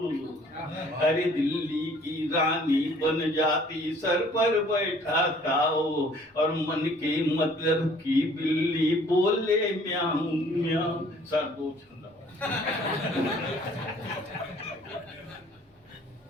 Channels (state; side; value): normal; both; correlation 0.56